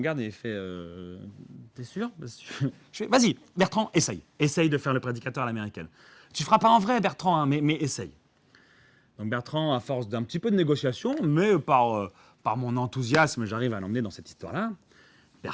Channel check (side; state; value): both; identical; correlation 1.00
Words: et il fait T'es sûr? Je fais Vas-y, Bertrand, essaye. Essaye de faire le prédicateur à l'américaine. Tu ne feras pas en vrai, Bertrand, hein, mais essaye. Donc Bertrand, à force d'un petit peu de négociation, mais par mon enthousiasme, j'arrive à l'emmener dans cette histoire-là.